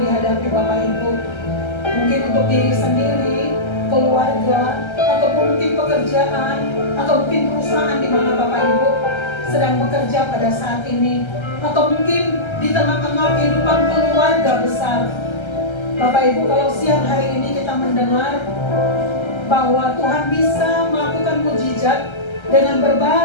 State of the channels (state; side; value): late; right; 1.3 ms